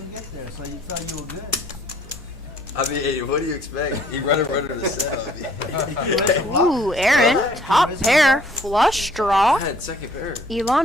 get there, so you thought you were good. I mean, hey, what do you expect? He runner to set. Ooh, Aaron, top pair, flush I draw. had second pair.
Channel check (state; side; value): normal; both; correlation 0.59